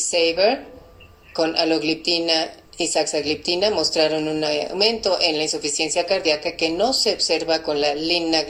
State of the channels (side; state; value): both; identical; correlation 1.00